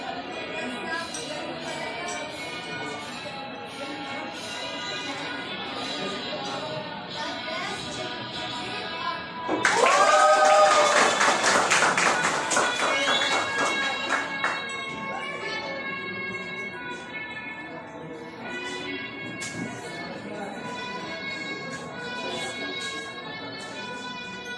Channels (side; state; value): both; identical; correlation 1.00